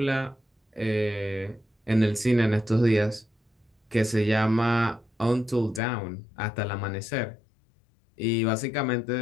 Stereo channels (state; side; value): drops out; right; at 5.8 s